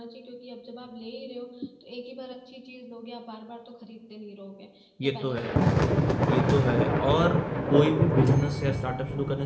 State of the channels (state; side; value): identical; both; correlation 1.00